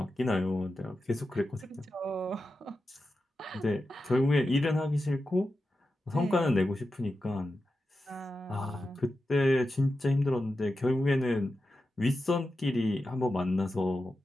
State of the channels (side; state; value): both; normal; correlation 0.91